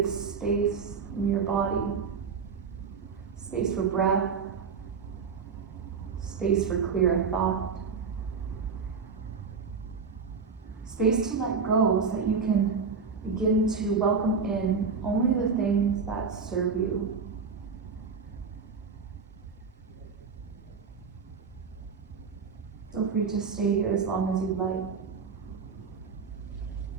space in your body, space for breath, space for clearer thought, space to let go so that you can begin to welcome in only the things that serve you. Feel free to stay here as long as you'd like.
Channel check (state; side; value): quieter; left; 5.4 dB